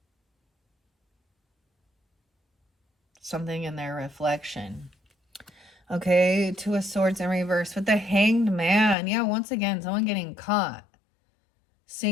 Something in their reflection. Okay, Two of Swords in reverse with the Hanged Man. Yeah, once again, someone getting caught.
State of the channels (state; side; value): drops out; right; at 9.0 s